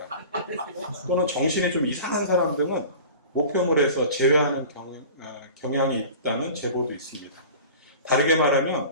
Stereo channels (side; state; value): both; inverted; correlation -0.39